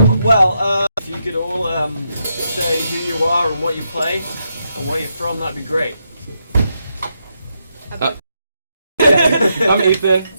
If you could all say who you are and what you play and where you're from, that'd be great. I'm Ethan.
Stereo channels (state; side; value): inverted; both; correlation -0.81